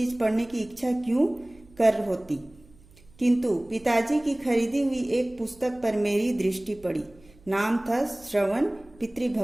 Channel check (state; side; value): noise; right; hum, 26 dB below the sound